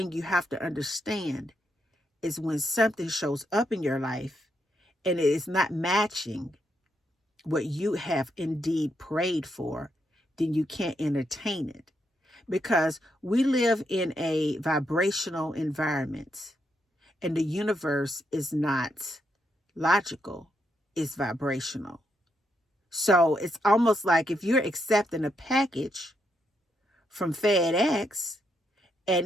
you have to understand is when something shows up in your life and it is not matching what you have indeed prayed for, then you can't entertain it. Because we live in a vibrational environment, and the universe is not logical, it's vibrational. So it's almost like if you're accepting a package from FedEx and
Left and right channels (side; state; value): both; normal; correlation 0.79